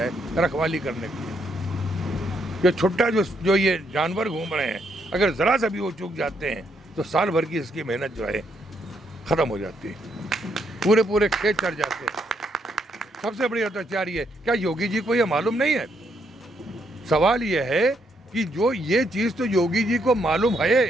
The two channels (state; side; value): normal; both; correlation 0.75